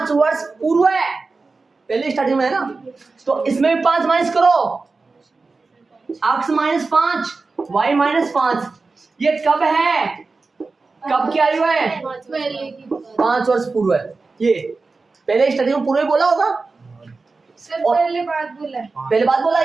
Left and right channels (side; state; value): left; quieter; 4.0 dB